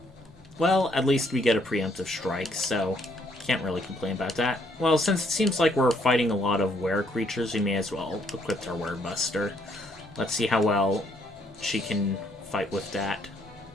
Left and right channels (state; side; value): normal; both; correlation 0.69